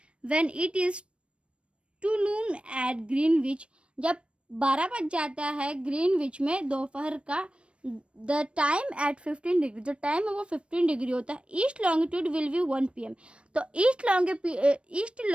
When it is two noon at Greenwich, जब 12 बज जाता है ग्रीनविच में दोपहर का, द टाइम एट 15 डिग्री, जो टाइम है वो 15 डिग्री होता है. East longitude will be 1 PM. तो ईस्ट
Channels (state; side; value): late; left; 0.059 ms